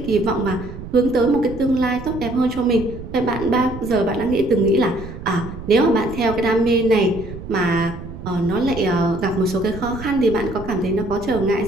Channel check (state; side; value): noise; right; rumble, 11 dB below the sound